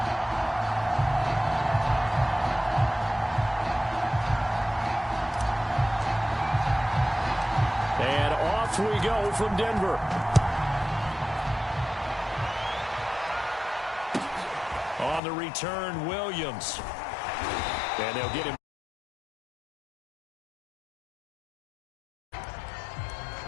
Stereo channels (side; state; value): right; drops out; at 15.2 s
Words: And off we go from Denver. On the return, Williams. And they'll get him.